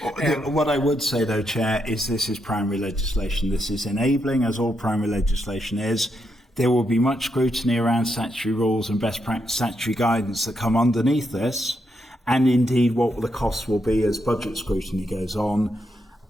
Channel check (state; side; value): normal; both; correlation 0.81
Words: What I would say, though, Chair, is this is primary legislation. This is enabling, as all primary legislation is. There will be much scrutiny around statutory rules and best practice statutory guidance that come underneath this, and indeed what the costs will be as budget scrutiny goes on.